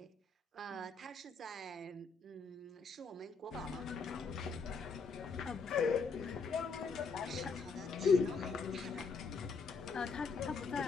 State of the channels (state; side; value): quieter; right; 4.8 dB